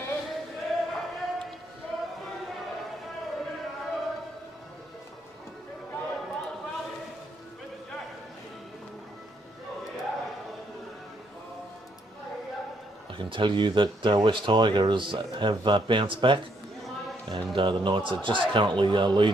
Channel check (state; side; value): normal; both; correlation 0.72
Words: I can tell you that West Tigers have bounced back, and the Knights are just currently